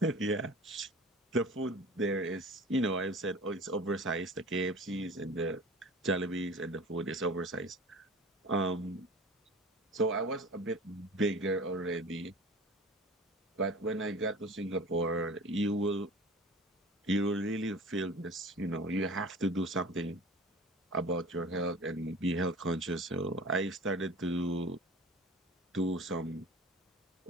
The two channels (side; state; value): both; normal; correlation 0.39